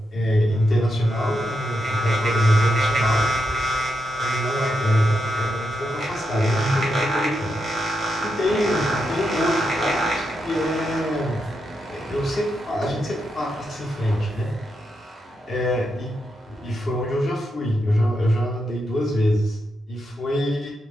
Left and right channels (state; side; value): normal; both; correlation 0.84